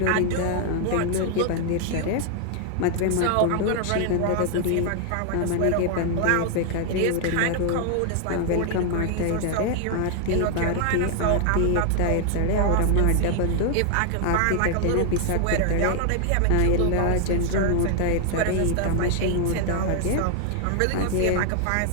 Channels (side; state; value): both; different; correlation 0.00